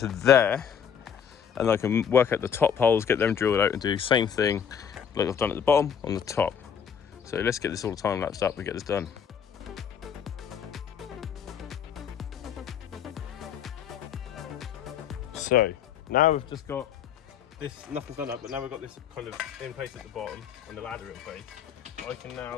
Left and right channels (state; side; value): quieter; right; 7.9 dB